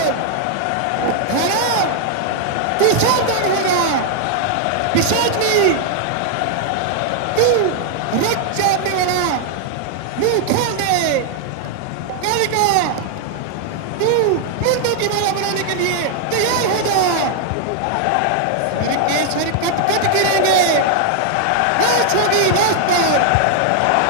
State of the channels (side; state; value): both; different; correlation 0.00